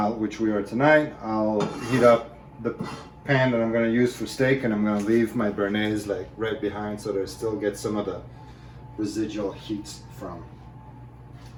which we are tonight, I'll heat up the pan that I'm going to use for steak and I'm going to leave my béarnaise like right behind so that it still gets some of the residual heat from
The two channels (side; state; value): both; identical; correlation 1.00